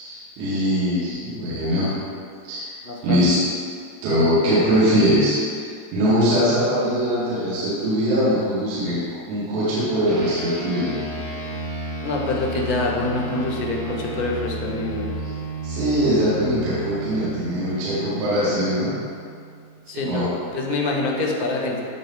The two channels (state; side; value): late; left; 27 ms